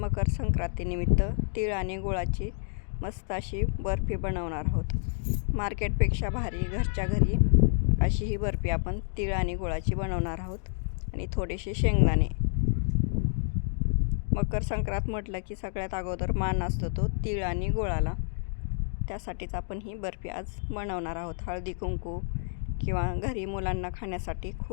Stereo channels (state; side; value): silent; right; digital silence